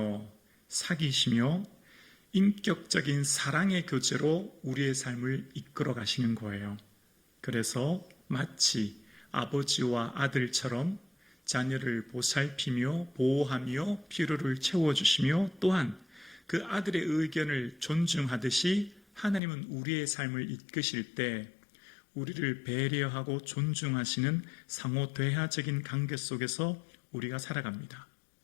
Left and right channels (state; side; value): drops out; right; at 19.4 s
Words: 사귀시며 인격적인 사랑의 교제로 우리의 삶을 이끌어 가시는 거예요. 그래서 마치 아버지와 아들처럼 자녀를 보살피며 보호하며 필요를 채워주시며 또한 그 아들의 의견을 존중하듯이 하나님은 우리의 삶을 이끄실 때 우리를 배려하고 존중하시는 상호 대화적인 관계 속에서 우리가 살아갑니다.